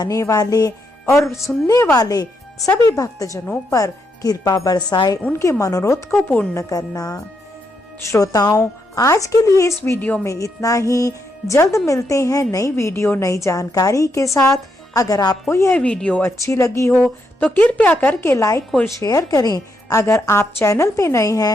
वाले और सुनने वाले सभी भक्तजनों पर कृपा बरसाए, उनके मनोरथ को पूर्ण करना। श्रोताओं, आज के लिए इस वीडियो में इतना ही। जल्द मिलते हैं नई वीडियो नई जानकारी के साथ। अगर आपको यह वीडियो अच्छी लगी हो तो कृपया करके लाइक और शेयर करें। अगर आप चैनल पे नए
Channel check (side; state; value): both; normal; correlation 0.79